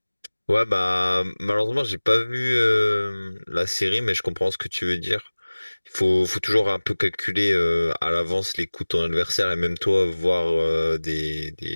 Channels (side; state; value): both; inverted; correlation -1.00